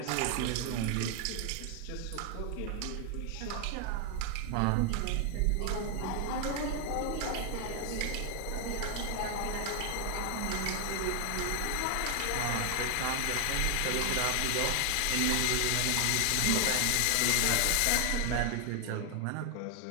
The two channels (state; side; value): different; both; correlation 0.00